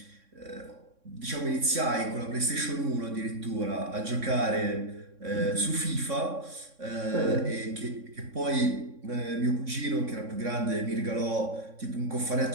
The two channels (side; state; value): left; late; 3.6 ms